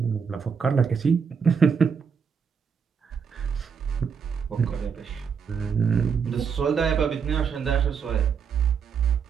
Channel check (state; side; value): quieter; left; 6.4 dB